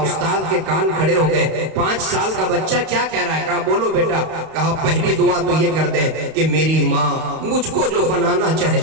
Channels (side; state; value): left; late; 31 ms